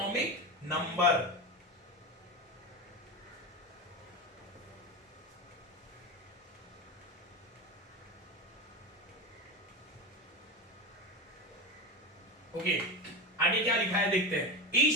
नंबर। ओके, आगे क्या लिखा है देखते हैं।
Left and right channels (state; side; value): normal; both; correlation 0.20